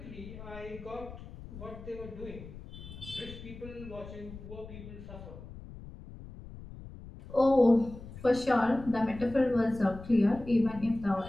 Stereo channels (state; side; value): noise; left; rumble, 14 dB below the sound